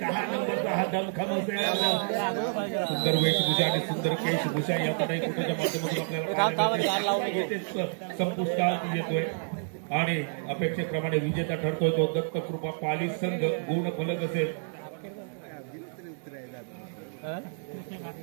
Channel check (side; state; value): left; silent; digital silence